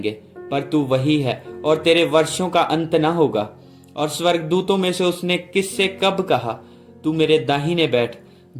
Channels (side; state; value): both; identical; correlation 1.00